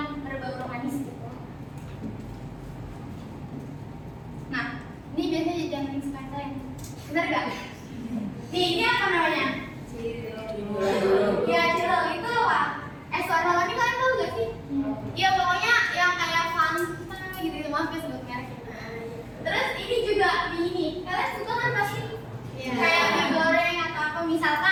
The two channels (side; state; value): both; identical; correlation 1.00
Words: berbau manis gitu. Nah ini biasanya jumping spine, bener nggak? Nih ini apa namanya? Ya cilok itu apa? Es warna ini kalian tahu gak sih? Iya pokoknya yang kayak Fanta gitu, maaf ya sebut merek. Terus ini juga mie ini, kalian suka kan pasti? Kayak mie goreng atau apa